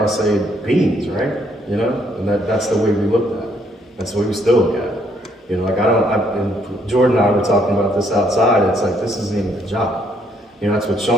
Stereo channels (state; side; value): normal; both; correlation 0.70